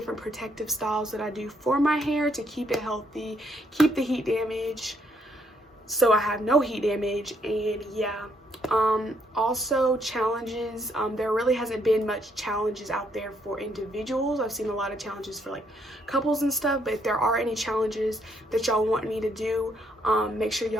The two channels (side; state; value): both; normal; correlation 0.72